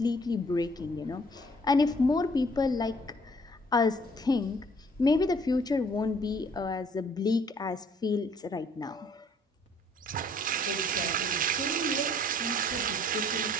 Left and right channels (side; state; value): both; normal; correlation 0.60